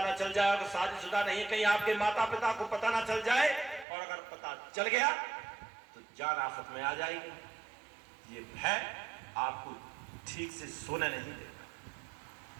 ना चल जाए, अगर शादीशुदा नहीं है कहीं आपके माता पिता को पता ना चल जाए, और अगर पता चल गया तो जान आफत में आ जाएगी। ये भय आपको ठीक से सोने नहीं देगा।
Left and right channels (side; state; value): left; drops out; at 3.9 s